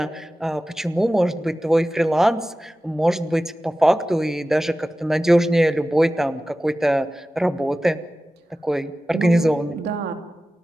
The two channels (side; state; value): both; normal; correlation 0.95